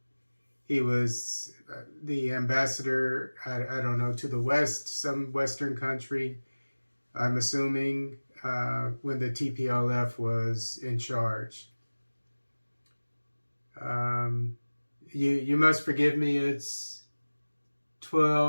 was the ambassador, I don't know, to the West, some Western country, I'm assuming, when the TPLF was in charge. Um, you must forgive me, it's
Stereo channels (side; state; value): both; inverted; correlation -1.00